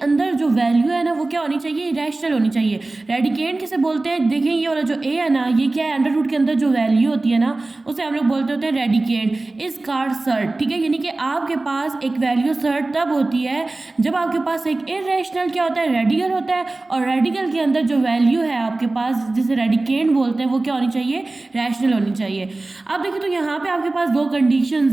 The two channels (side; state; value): left; quieter; 3.1 dB